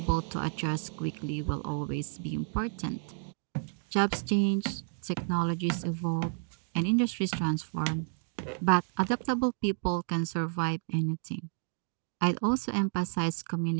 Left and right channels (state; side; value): silent; left; 57 dB below the other